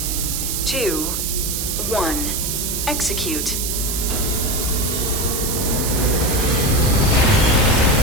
2, 1. Execute.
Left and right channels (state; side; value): noise; right; hiss, 2 dB below the sound